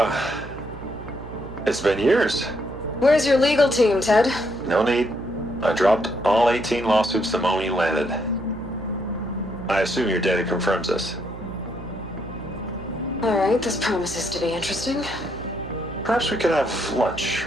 it's been years. Where's your legal team, Ted? No need. I dropped all 18 lawsuits the moment you landed. I assume your data confirms this. All right, this promises to be interesting. Perhaps we could have lunch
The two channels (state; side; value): noise; right; hum, 13 dB below the sound